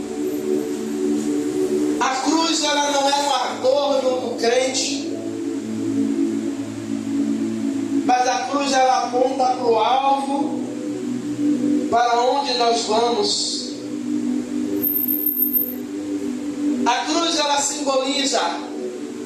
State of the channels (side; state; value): both; identical; correlation 1.00